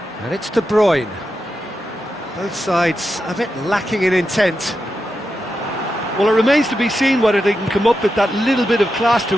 And it's De Bruyne. Both sides a bit lacking in intent. Well, it remains to be seen whether they can come up with that little bit of class to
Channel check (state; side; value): normal; both; correlation 0.88